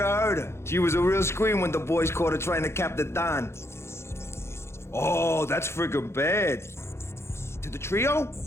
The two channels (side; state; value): right; late; 0.13 ms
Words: heard her. She was a real scream when the boys caught her trying to cap the Don. Oh, that's friggin' bad. To the trio?